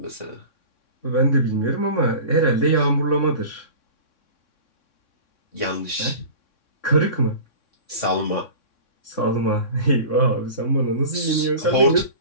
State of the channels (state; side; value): late; right; 3.6 ms